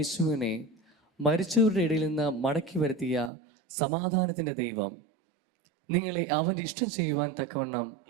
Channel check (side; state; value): left; drops out; at 3.3 s